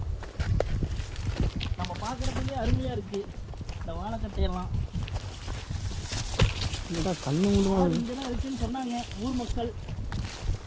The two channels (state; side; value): identical; both; correlation 1.00